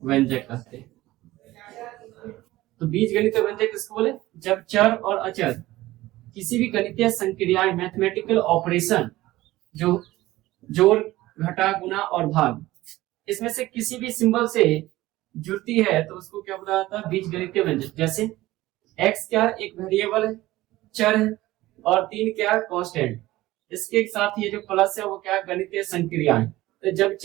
व्यंजक कहते हैं। तो बीजगणितीय व्यंजक किसको बोले? जब चर और अचर किसी भी गणितीय संक्रियाएं, मैथमेटिकल ऑपरेशन, जो जोड़ घटा गुना और भाग, इसमें से किसी भी सिंबल से जुड़ती है तो उसको क्या बोला जाता है? बीजगणितीय व्यंजक। जैसे x क्या? एक वेरिएबल है, चर है, और 3 क्या? कांस्टेंट। इसके साथ ये जो प्लस है वो क्या? गणितीय संक्रियाएं। तो जब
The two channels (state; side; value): quieter; left; 17.2 dB